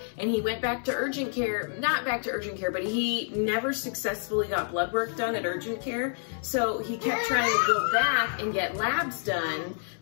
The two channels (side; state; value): right; silent; digital silence